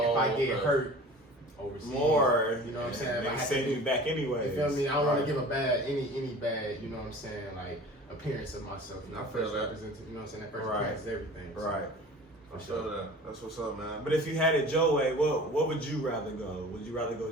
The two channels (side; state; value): both; normal; correlation 0.41